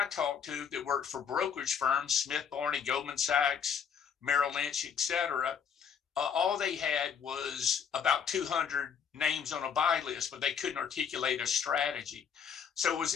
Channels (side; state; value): right; quieter; 7.2 dB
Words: talked to that worked for brokerage firms, Smith Barney, Goldman Sachs, Merrill Lynch, et cetera, all they had was about 200 names on a buy list, but they couldn't articulate a strategy. So it was